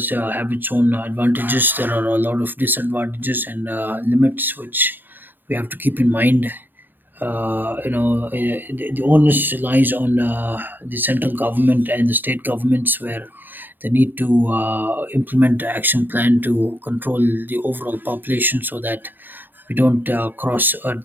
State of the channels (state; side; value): late; left; 0.092 ms